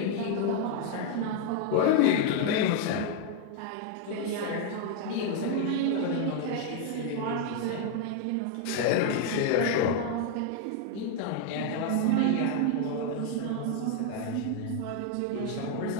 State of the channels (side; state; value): both; different; correlation 0.00